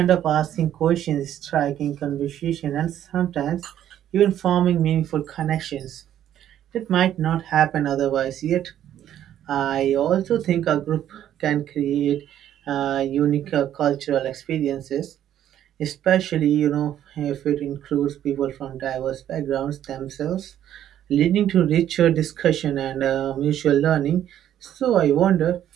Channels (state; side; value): quieter; left; 11.1 dB